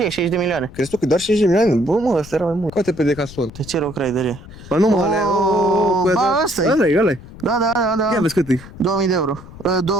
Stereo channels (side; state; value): left; noise; rumble, 17 dB below the sound